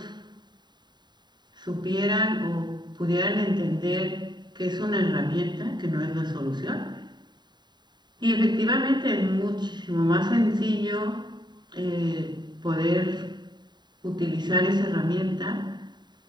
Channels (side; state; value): left; late; 0.21 ms